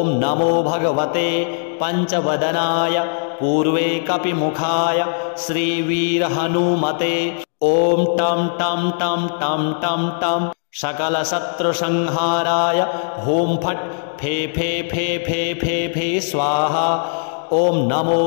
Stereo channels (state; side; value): silent; right; digital silence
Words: नमो भगवते पंचवदनाय पूर्वे कपिमुखाय श्रीवीरहनुमते। ओम टम टम टम टम टम टम सकल शत्रु संहाराय होम फट फे फे फे फे फे फे स्वाहा। ओम नमो